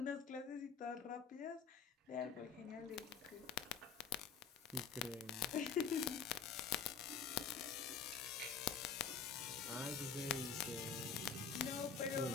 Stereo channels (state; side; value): quieter; right; 6.4 dB